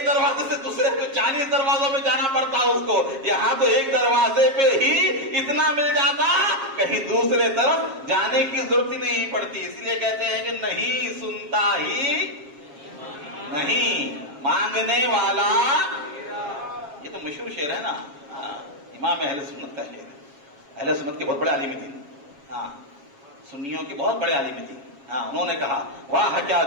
دروازے سے دوسرے پہ 40 دروازوں میں جانا پڑتا اس کو، یہاں تو ایک دروازے پہ ہی اتنا مل جاتا کہیں دوسرے طرف جانے کی ضرورت ہی نہیں پڑتی، اس لیے کہتے ہیں کہ نہیں سنتا ہی نہیں مانگنے والا، یہ تو مشہور شعر ہے نا، امام اہل سنت کا شعر ہے، اہل سنت کے بہت بڑے عالم تھے، ہاں سنیوں کے بہت بڑے عالم تھے، ہاں انہوں نے کہا واہ کیا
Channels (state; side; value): late; left; 7.4 ms